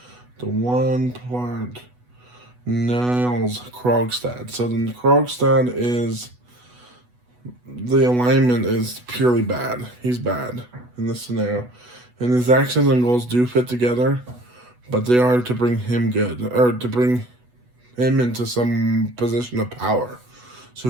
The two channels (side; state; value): left; late; 8.1 ms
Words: The one part. Niles Krogstad. So then Krogstad is, the alignment is purely bad. He's bad in this scenario. And his actions and goals do fit together, but they are to bring him good, or to bring him into some position of power.